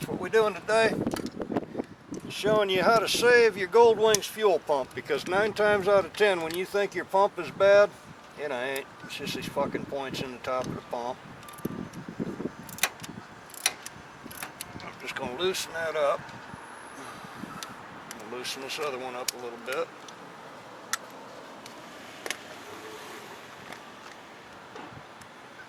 what we're doing today is showing you how to save your Goldwing's fuel pump, because 9 times out of 10 when you think your pump is bad, it ain't. It's just these fucking points in the top of the pump. I'm just going to loosen that up. I'm going to loosen this other one up a little bit.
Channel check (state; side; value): identical; both; correlation 1.00